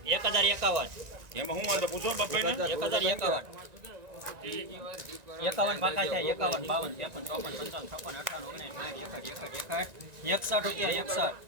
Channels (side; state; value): left; late; 1.9 ms